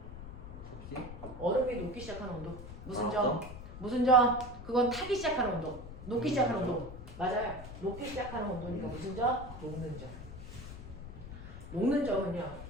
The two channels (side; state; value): left; noise; rumble, 11 dB below the sound